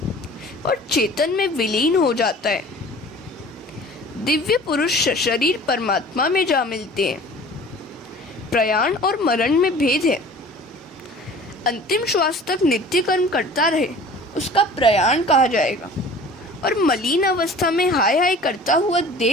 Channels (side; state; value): both; normal; correlation 0.45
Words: और चेतन में विलीन हो जाता है। दिव्य पुरुष शरीर परमात्मा में जा मिलते हैं। प्रयाण और मरण में भेद है। अंतिम श्वास तक नित्य कर्म करता रहे उसका प्रयाण कहा जाएगा, और मलिन अवस्था में हाय हाय करता हुआ